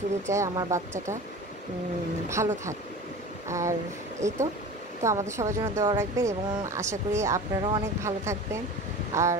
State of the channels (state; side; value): normal; both; correlation 0.36